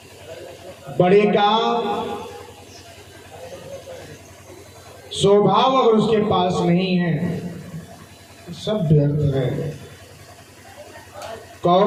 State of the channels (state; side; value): identical; both; correlation 1.00